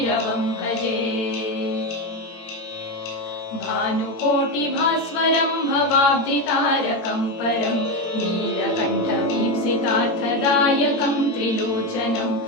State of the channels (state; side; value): late; right; 17 ms